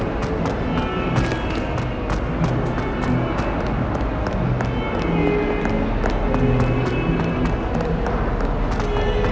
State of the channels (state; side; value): identical; both; correlation 1.00